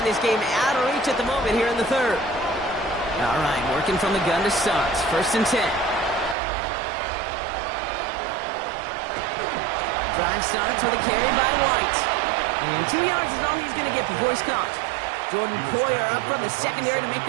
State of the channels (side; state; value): left; drops out; at 6.4 s